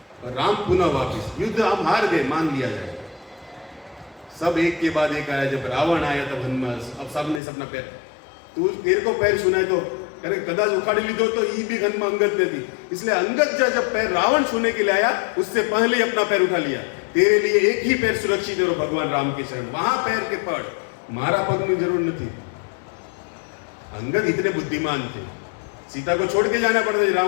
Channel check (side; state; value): right; drops out; at 7.4 s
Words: और राम पुनः वापिस। युद्ध हम हार गए, मान लिया जाएगा। सब एक के बाद एक आया। जब रावण आया तब हनुमान, अब सब ने अपना पैर, तू तेरे को पैर सुनाए तो अरे कदाच उखाड़ी ली दो तो ये भी हनुमान अंगद ने दी। इसलिए अंगद जब पैर रावण छूने के लिए आया, उससे पहले ही अपना पैर उठा लिया। तेरे लिए एक ही पैर सुरक्षित है, भगवान राम के शरण। वहां पैर के पड़, मारा पग में जरूर नहीं थी। अंगद इतने बुद्धिमान थे, सीता को छोड़ के जाना पड़ता,